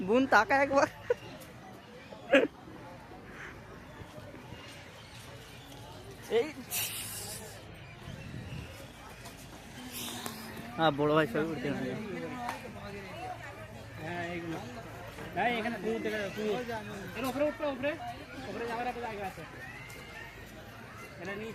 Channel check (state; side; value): identical; both; correlation 1.00